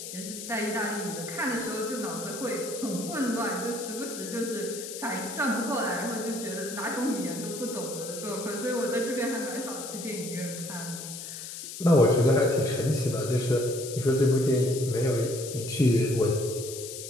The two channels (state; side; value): noise; left; hiss, 9 dB below the sound